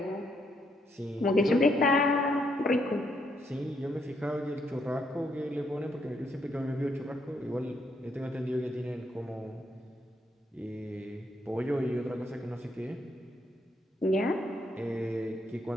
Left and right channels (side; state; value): both; normal; correlation 0.75